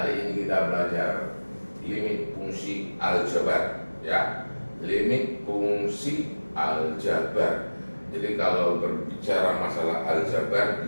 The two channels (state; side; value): inverted; both; correlation -1.00